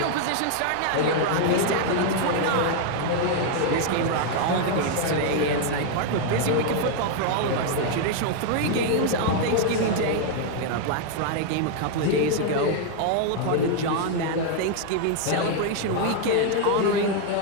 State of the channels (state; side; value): different; both; correlation 0.00